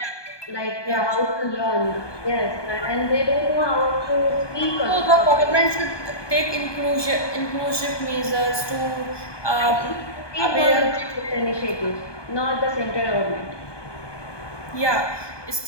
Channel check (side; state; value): right; late; 1.2 ms